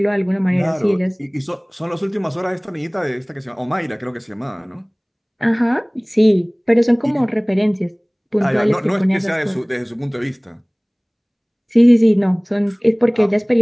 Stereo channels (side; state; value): both; identical; correlation 1.00